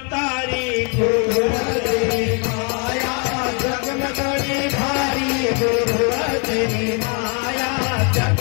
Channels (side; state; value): right; quieter; 36.1 dB